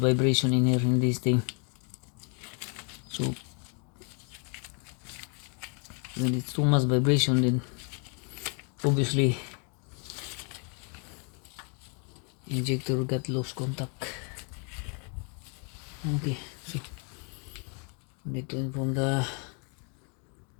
in here in this thing. So when it's too much vibration, then obviously injector got loose contact. Okay, so need to inform the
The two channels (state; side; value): quieter; right; 38.5 dB